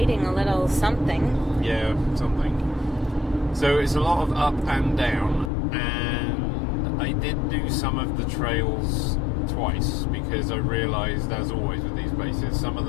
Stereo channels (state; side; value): drops out; right; at 5.5 s